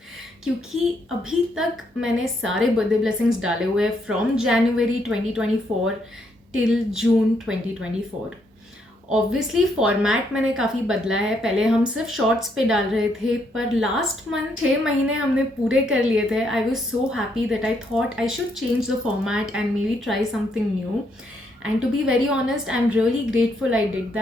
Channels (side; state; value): both; normal; correlation 0.74